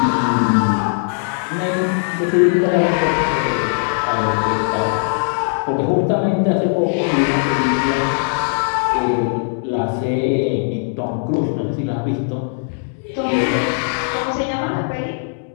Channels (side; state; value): right; silent; 67 dB below the other